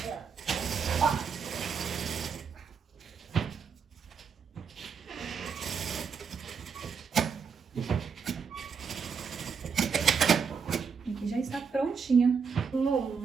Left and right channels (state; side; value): quieter; left; 6.0 dB